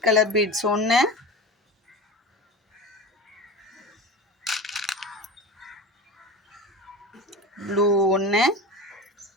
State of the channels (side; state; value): both; normal; correlation 0.30